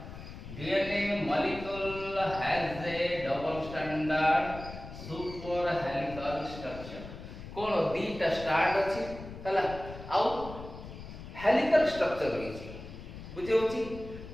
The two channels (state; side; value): noise; left; rumble, 12 dB below the sound